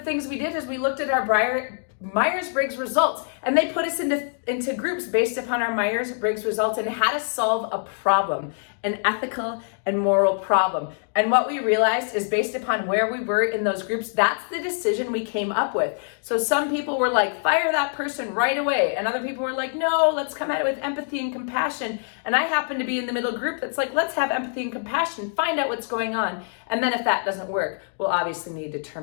we did is we looked at our Myers-Briggs results, and they put us into groups based upon our Myers-Briggs results and had us solve a problem, an ethical and moral problem. And what we realized is, based upon where we were in those groups, that's the decision we came up with. So some people were like, fire that person right away. And other people were like, no, let's come at it with empathy and compassion. And I happen to be in the middle group that's like, let's have empathy and compassion, find out what's going on. And then if that doesn't work, we'll obviously need to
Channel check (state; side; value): silent; right; digital silence